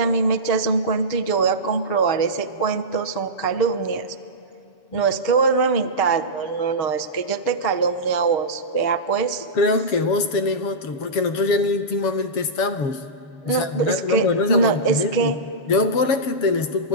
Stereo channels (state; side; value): late; right; 7.1 ms